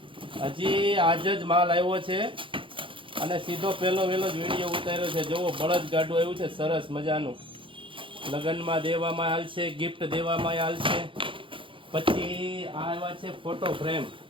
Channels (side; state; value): left; late; 0.25 ms